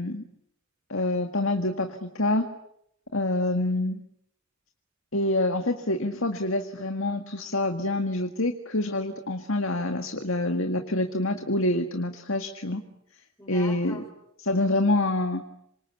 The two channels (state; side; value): normal; both; correlation 0.12